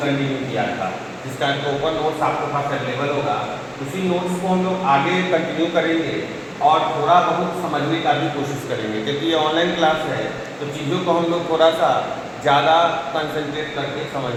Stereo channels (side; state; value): both; identical; correlation 1.00